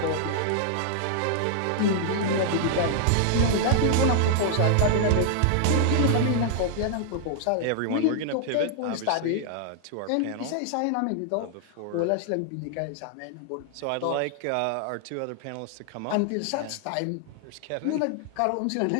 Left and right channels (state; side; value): different; both; correlation 0.00